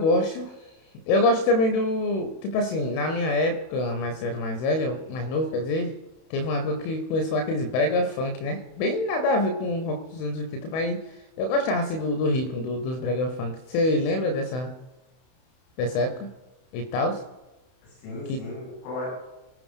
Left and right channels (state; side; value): late; right; 31 ms